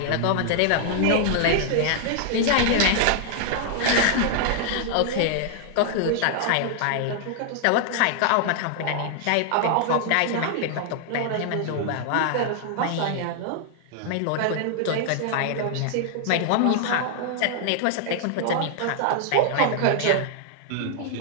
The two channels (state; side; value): different; both; correlation 0.00